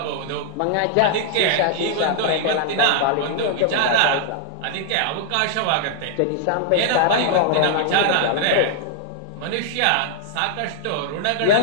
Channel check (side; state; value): both; different; correlation -0.01